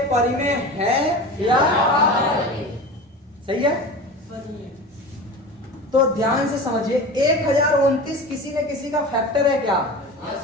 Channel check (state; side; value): normal; both; correlation 0.32